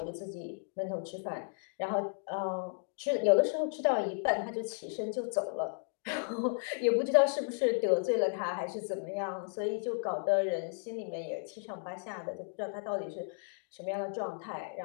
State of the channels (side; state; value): right; silent; digital silence